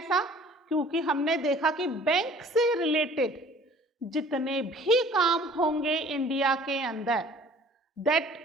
क्योंकि हमने देखा कि बैंक से रिलेटेड जितने भी काम होंगे इंडिया के अंदर,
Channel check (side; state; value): both; normal; correlation 0.51